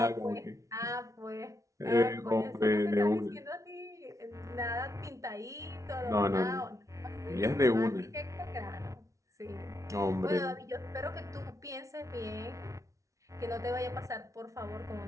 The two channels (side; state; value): left; late; 0.15 ms